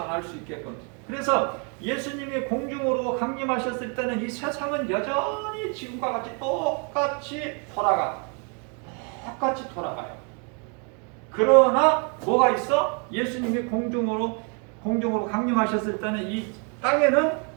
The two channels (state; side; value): quieter; left; 37.4 dB